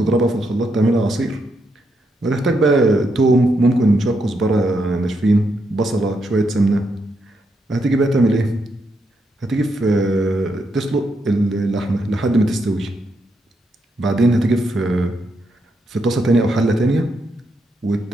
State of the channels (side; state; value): both; normal; correlation 0.80